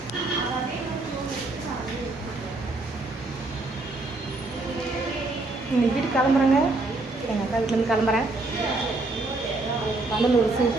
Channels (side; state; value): left; quieter; 3.1 dB